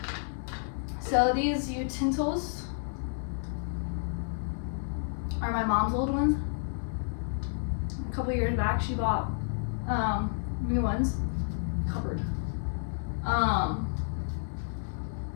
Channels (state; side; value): silent; right; digital silence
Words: So these utensils are my mom's old ones. A couple years back she bought new ones. Covered.